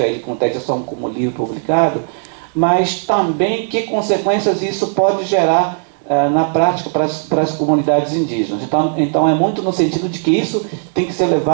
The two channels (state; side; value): silent; left; 62 dB below the other